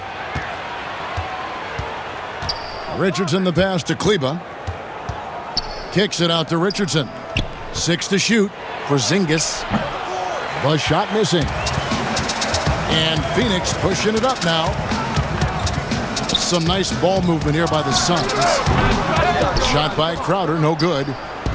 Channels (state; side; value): identical; both; correlation 1.00